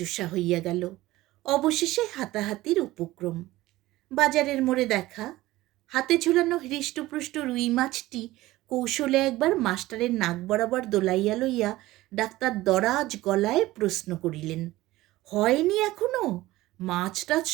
হইয়া গেল। অবশেষে হাতাহাতির উপক্রম। বাজারের মোড়ে দেখা। হাতে ঝুলানো হৃষ্টপুষ্ট রুই মাছটি কৌশলে একবার মাস্টারের নাক বরাবর দোলাইয়া লইয়া ডাক্তার দরাজ গলায় প্রশ্ন করিলেন, হয়নি এখনো? মাছ টাছ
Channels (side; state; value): left; quieter; 17.5 dB